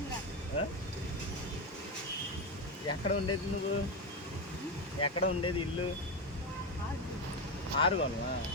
ఎక్కడ ఉండేది నువ్వు? ఎక్కడ ఉండేది ఇల్లు? ఆరుగోనమా?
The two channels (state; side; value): normal; both; correlation 0.13